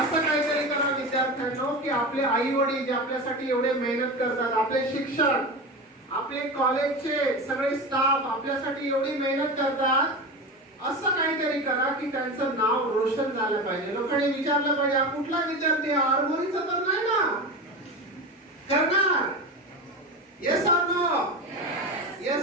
काहीतरी करा विद्यार्थ्यांनो की आपले आई वडील जे आपल्यासाठी एवढे मेहनत करतात, आपले शिक्षक, आपले कॉलेजचे सगळे स्टाफ आपल्यासाठी एवढी मेहनत करतात, असं काहीतरी करा की त्यांचं नाव रोशन झालं पाहिजे. लोकांनी विचारलं पाहिजे हा कुठला विद्यार्थी, आरमोरीचा तर नाही ना? करणार? Yes or no?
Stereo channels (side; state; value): both; normal; correlation 0.25